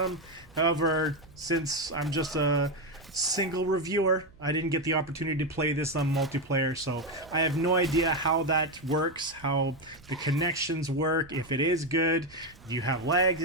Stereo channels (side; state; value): right; noise; hum, 26 dB below the sound